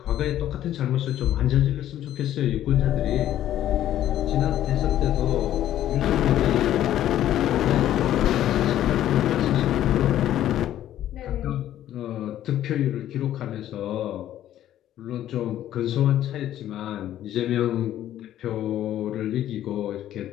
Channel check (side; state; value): right; quieter; 12.2 dB